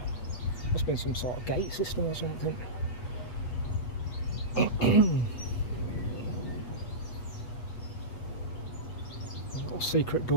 Must have been some sort of gate system or something. A little secret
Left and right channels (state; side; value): late; right; 8.3 ms